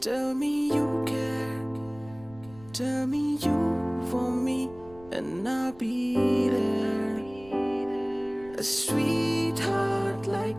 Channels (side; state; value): right; noise; rumble, 22 dB below the sound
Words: Tell me you care, tell me you want me, and I'll be there. A sweetheart.